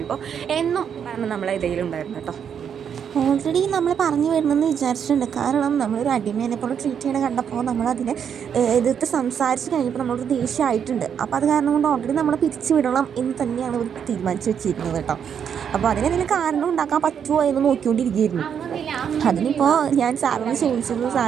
എന്നും പറഞ്ഞ് നമ്മളെ ഇടയിലുണ്ടായിരുന്നു കേട്ടോ. ഓൾറെഡി നമ്മൾ പറഞ്ഞു വരുന്നെന്ന് വിചാരിച്ചിട്ടുണ്ട്. കാരണം നമ്മളൊരു അടിമേനെ പോലെ ട്രീറ്റ് ചെയ്യണ കണ്ടപ്പോൾ നമ്മളതിനെ എതിർത്ത് സംസാരിച്ച് കഴിഞ്ഞപ്പോൾ നമ്മളൊരു ദേഷ്യമായിട്ടുണ്ട്. അപ്പോൾ അത് കാരണം കൊണ്ട് ഓൾറെഡി നമ്മളെ പിരിച്ചു വിടണം എന്ന് തന്നെയാണ് ഇവർ തീരുമാനിച്ച് വെച്ചിരിക്കുന്നത് കേട്ടോ. അപ്പോൾ അതിനെന്തെങ്കിലും കാരണം ഉണ്ടാക്കാൻ പറ്റുമോ എന്ന് നോക്കിക്കൊണ്ടിരിക്കുകയായിരുന്നു. അതിനിപ്പോൾ ഞാൻ സാലറി ചോദിച്ചത്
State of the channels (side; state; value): left; quieter; 7.9 dB